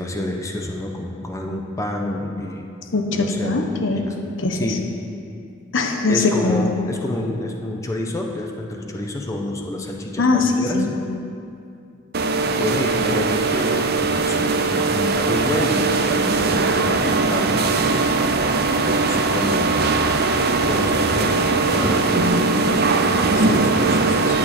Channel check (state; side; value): normal; both; correlation 0.20